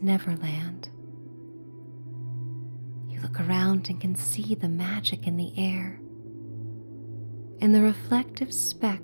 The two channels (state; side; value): inverted; both; correlation -1.00